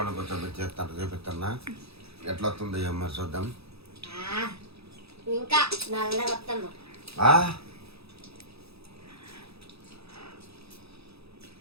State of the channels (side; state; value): left; late; 0.78 ms